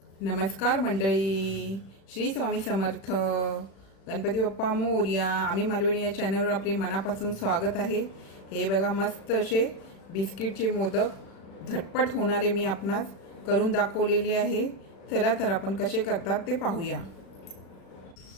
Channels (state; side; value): late; right; 36 ms